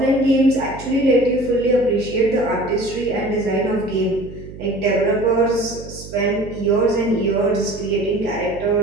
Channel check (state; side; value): noise; right; hum, 14 dB below the sound